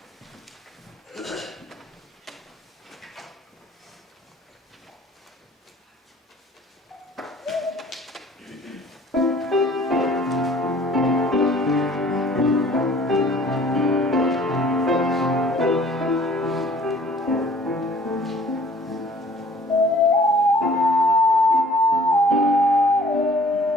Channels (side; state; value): both; normal; correlation 0.53